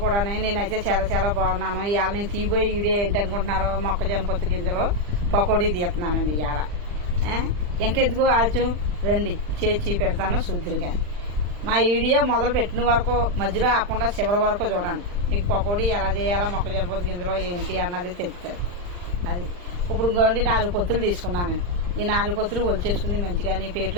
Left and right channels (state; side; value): late; left; 40 ms